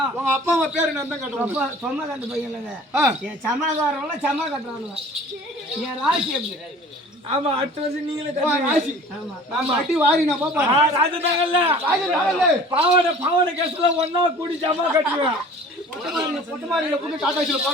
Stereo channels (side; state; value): both; normal; correlation 0.46